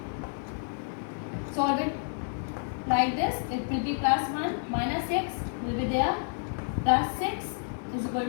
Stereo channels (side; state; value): right; silent; digital silence